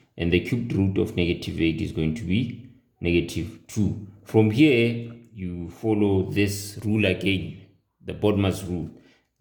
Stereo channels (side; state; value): both; identical; correlation 1.00